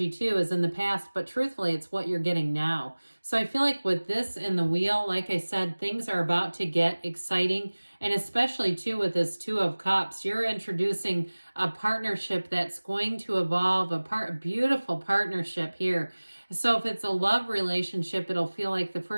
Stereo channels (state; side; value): inverted; both; correlation -1.00